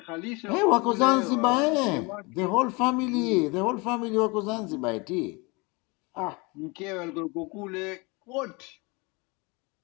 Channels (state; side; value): quieter; right; 27.5 dB